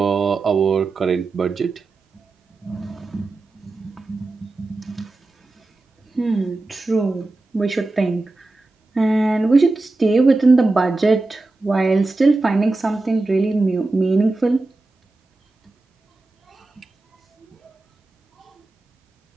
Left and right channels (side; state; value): left; quieter; 3.2 dB